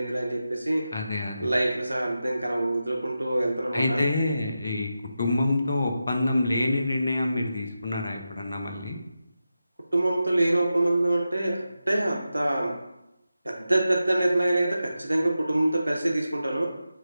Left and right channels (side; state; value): both; inverted; correlation -0.90